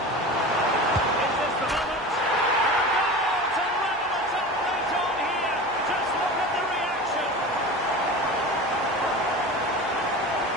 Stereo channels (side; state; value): both; normal; correlation 0.32